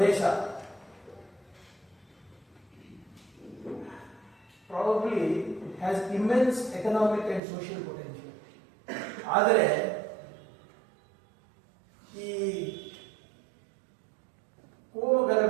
probably has immense economic and social potential. ಆದರೆ ಈ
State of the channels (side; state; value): left; drops out; at 7.4 s